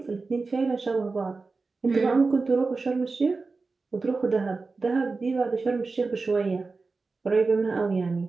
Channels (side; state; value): left; quieter; 4.0 dB